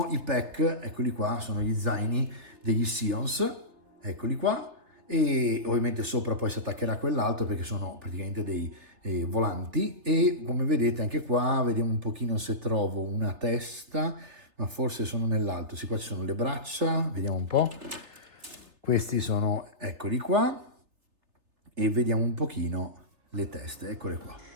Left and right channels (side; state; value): left; late; 3.4 ms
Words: i pack, eccoli qua, sono gli zaini degli Sions, eccoli qua, e ovviamente sopra poi si attaccherà quell'altro perché sono praticamente dei volanti, e come vedete anche qua vediamo un pochino se trovo una testa, ma forse sono nell'alto. Sì, qua ci sono le braccia, vediamo un po', questi sono, eccoli qua, e vediamo un pochino le teste, eccole qua,